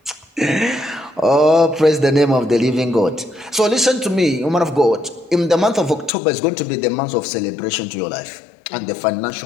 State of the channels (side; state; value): right; drops out; at 6.1 s